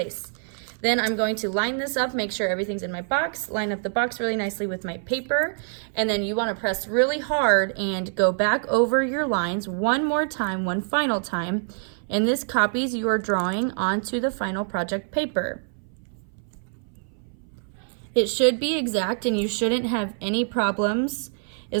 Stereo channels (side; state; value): left; silent; 60 dB below the other